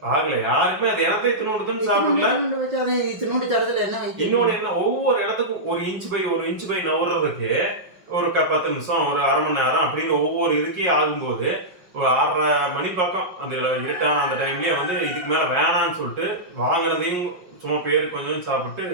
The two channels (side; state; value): left; late; 5.5 ms